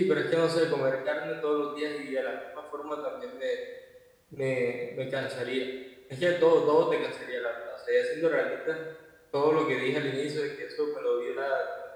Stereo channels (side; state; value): both; identical; correlation 1.00